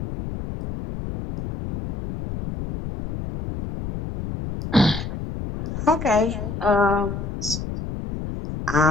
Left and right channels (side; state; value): left; noise; rumble, 6 dB below the sound